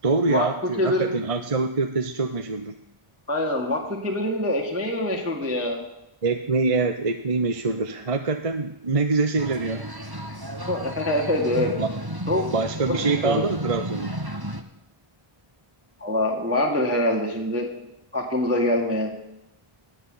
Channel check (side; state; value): left; late; 1.1 ms